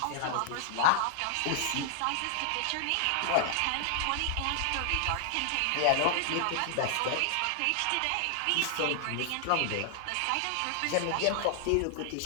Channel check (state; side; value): different; both; correlation 0.00